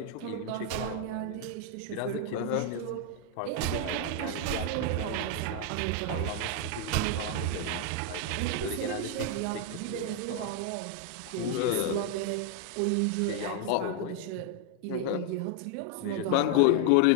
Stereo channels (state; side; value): different; both; correlation 0.00